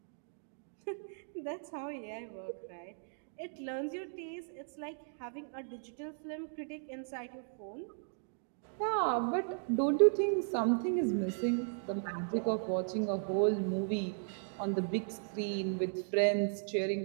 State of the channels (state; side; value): silent; left; digital silence